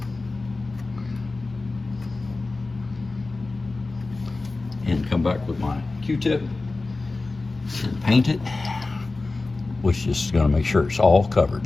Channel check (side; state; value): right; quieter; 3.4 dB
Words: And come back with my Q-tip and paint it, which is going to make sure it's all covered.